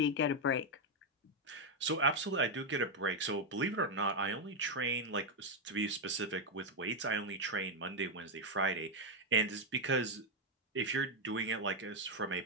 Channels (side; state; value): both; normal; correlation 0.03